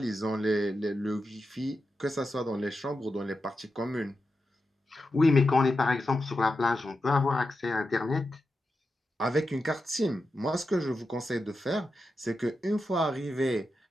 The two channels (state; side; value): normal; both; correlation 0.89